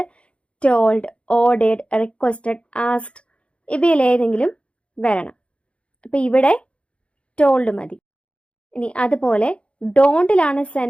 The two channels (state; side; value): late; right; 0.059 ms